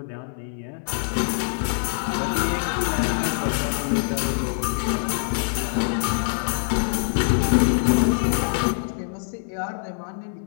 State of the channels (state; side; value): silent; right; 59 dB below the other